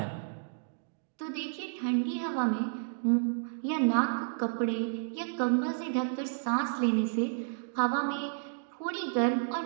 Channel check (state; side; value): silent; left; digital silence